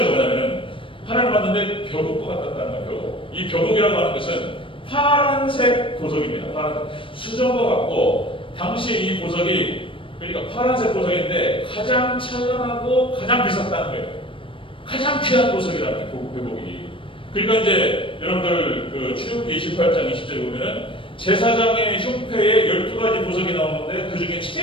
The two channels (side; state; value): right; late; 0.25 ms